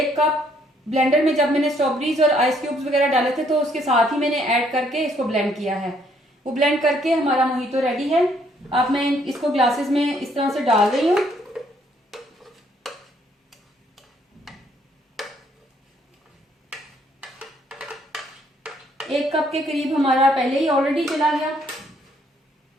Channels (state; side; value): normal; both; correlation 0.67